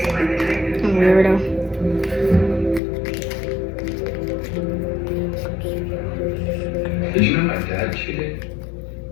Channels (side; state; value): right; drops out; at 2.8 s